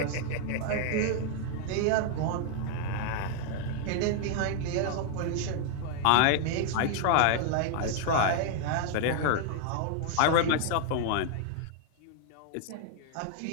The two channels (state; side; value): different; both; correlation 0.00